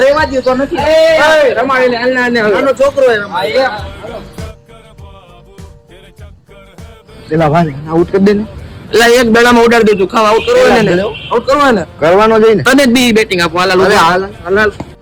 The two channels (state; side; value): identical; both; correlation 1.00